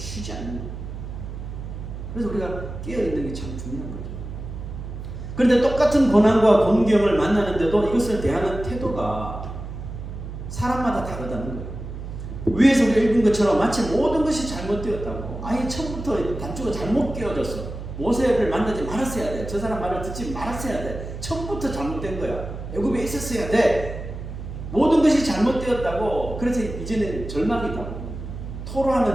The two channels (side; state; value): right; noise; hum, 9 dB below the sound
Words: 않는 거예요. 그래서 우리가 깨어있는 게 참 중요한 거죠. 그런데 똑같은 고난과 공경을 만나는데도 이것을 대하는 태도가 사람마다 다르다는 거예요. 위에서 우리가 읽은 것처럼 마치 모든 것이 잘못되었다고. 아예 처음부터 단추가 잘못 끼워졌어. 모세를 만나지 말았어야 돼. 저 사람 말을 듣지 말았어야 돼. 처음부터 잘못된 거야. 애굽에 있었어야 돼. 모든 것이 잘못되었다고. 그래서 이제는 절망이다.